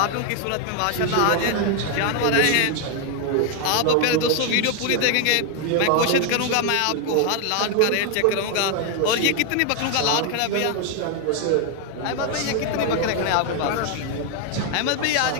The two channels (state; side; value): different; both; correlation 0.01